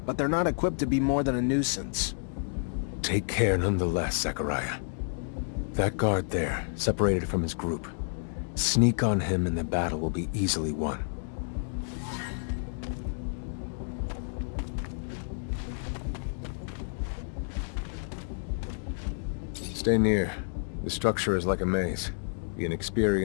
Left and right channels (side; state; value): right; silent; digital silence